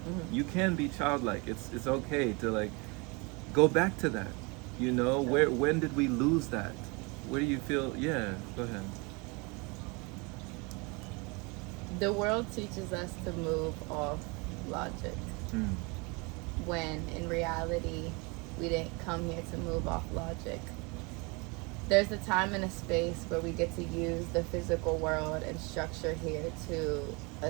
You can be childlike. It's okay to, like, go back to that, when did we lose that? Where do you feel? Yeah, go ahead. The world teaches us to move off logic. when in reality we didn't come here to move off logic. There's a time and a space where we get to use the physical world and structure here to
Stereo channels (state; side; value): quieter; left; 29.0 dB